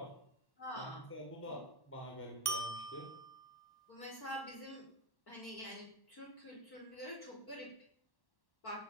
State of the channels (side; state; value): right; late; 1.1 ms